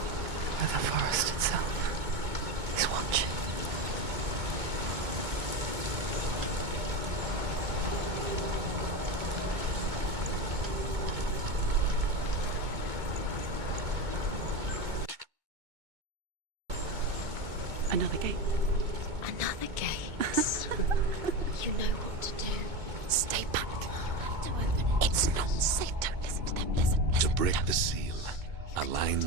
where the forest itself is watching. Another gate. Another gate. You know what to do. Stay back. To open it. It's not safe. Don't listen to them. Listen. To break the seal, align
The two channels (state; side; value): late; left; 2.2 ms